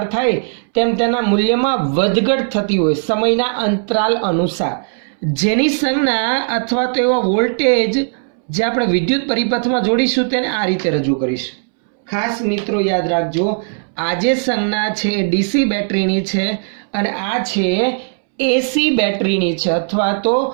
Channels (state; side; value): silent; left; 67 dB below the other